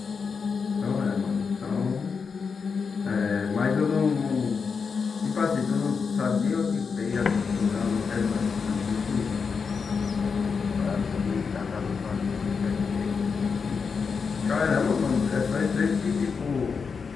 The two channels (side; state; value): right; quieter; 5.5 dB